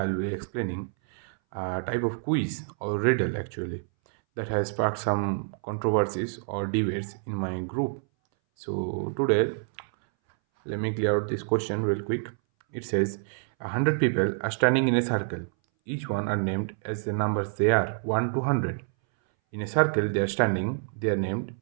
be explaining a type of quiz or riddle actually that has sparked some controversies or debates in my group. So today, let me clear out this question real quick. It says 100 people are standing in a circle. Each one are named as the numbers they are 1 to 100. In a circle they are standing, they are named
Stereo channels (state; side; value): silent; left; 60 dB below the other